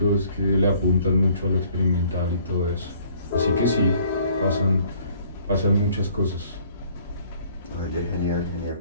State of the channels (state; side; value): inverted; both; correlation -0.59